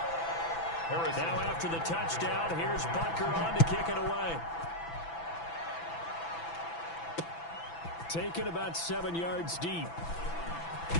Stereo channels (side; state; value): right; late; 6.0 ms